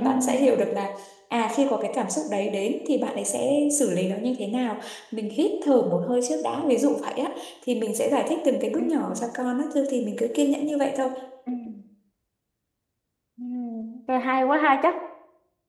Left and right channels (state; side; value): identical; both; correlation 1.00